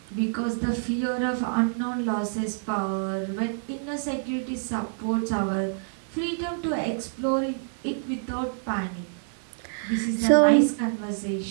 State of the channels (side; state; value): left; silent; digital silence